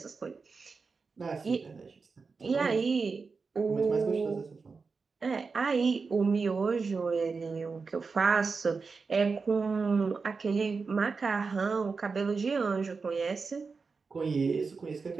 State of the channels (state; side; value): quieter; left; 4.7 dB